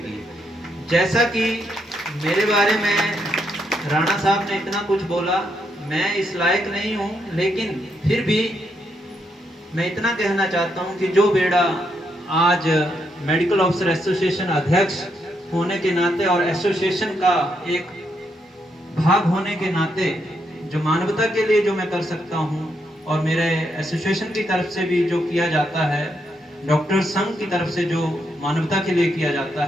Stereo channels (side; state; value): both; normal; correlation 0.78